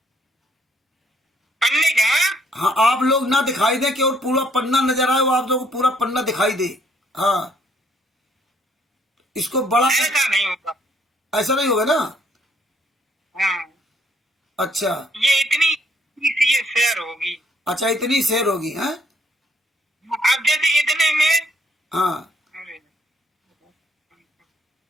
पन्ने का? हाँ, आप लोग ना दिखाई दे कि और पूरा पन्ना नजर आए, वो आप लोगों को पूरा पन्ना दिखाई दे। हाँ, इसको बड़ा ऐसा नहीं होगा, ऐसा नहीं होगा ना? हाँ। अच्छा, ये इतनी ये शेयर होगी। अच्छा इतनी शेयर होगी है? अब जैसे इतने में, हाँ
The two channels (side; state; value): both; normal; correlation 0.67